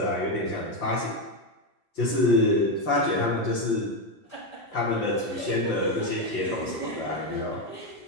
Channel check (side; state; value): right; late; 5.8 ms